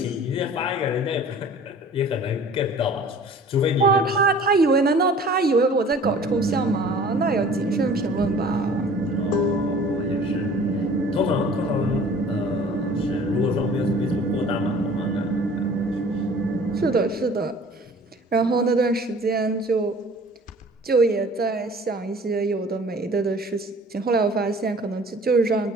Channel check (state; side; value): normal; both; correlation 0.48